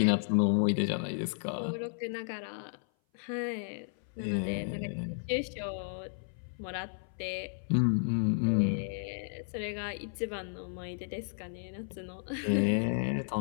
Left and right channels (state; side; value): silent; right; 56 dB below the other